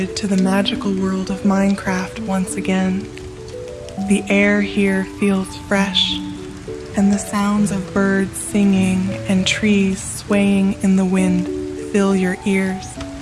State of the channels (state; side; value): identical; both; correlation 1.00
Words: to the magical world of Minecraft once again. The air here feels fresh, and the sounds of birds singing and trees swaying in the wind fill your ears.